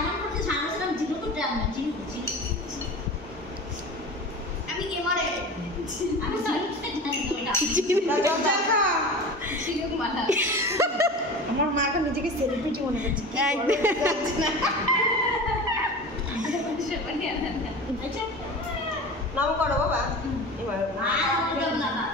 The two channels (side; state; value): both; normal; correlation 0.33